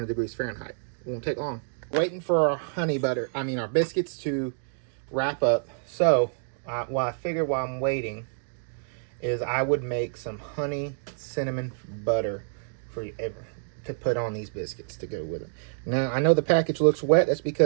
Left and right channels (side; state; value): left; silent; digital silence